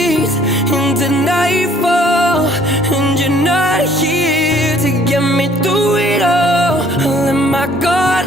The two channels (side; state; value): both; normal; correlation 0.59